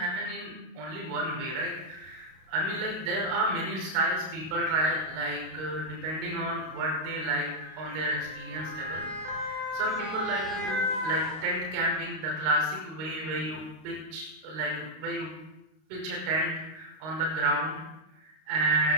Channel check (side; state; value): left; late; 32 ms